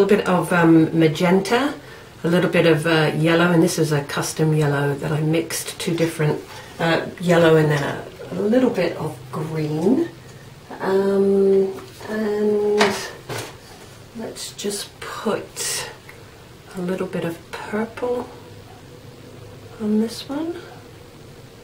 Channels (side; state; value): both; identical; correlation 1.00